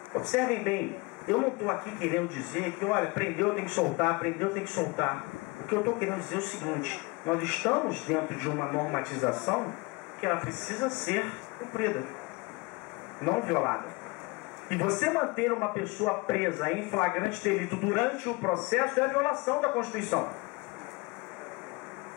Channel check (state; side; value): quieter; right; 26.0 dB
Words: Observem bem, eu não estou aqui querendo dizer que, olha, prendeu, tem que soltar, prendeu, tem que soltar. O que eu estou querendo dizer é o seguinte, nós estamos dentro de uma normatização que ela precisa ser cumprida, não violada. E você manter uma pessoa presa em flagrante delito durante o processo é a violação da Constituição.